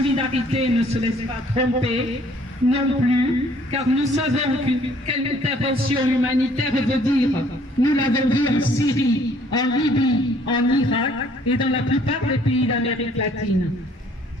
ne se laissent pas tromper non plus, car nous savons quelle intervention humanitaire veut dire. Nous l'avons vu en Syrie, en Libye, en Irak et dans la plupart des pays d'Amérique latine.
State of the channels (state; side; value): normal; both; correlation 0.60